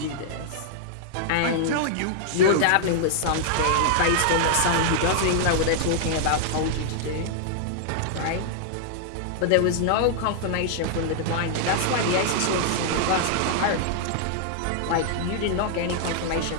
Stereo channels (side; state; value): both; different; correlation -0.01